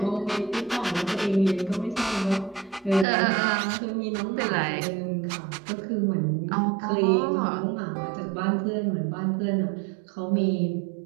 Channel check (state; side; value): drops out; left; at 3.1 s